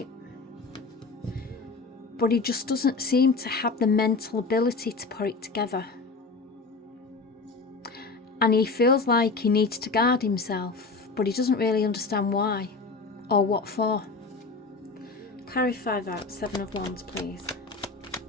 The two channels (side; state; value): right; quieter; 4.0 dB